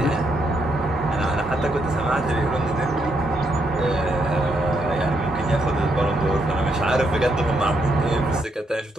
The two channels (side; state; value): both; normal; correlation 0.77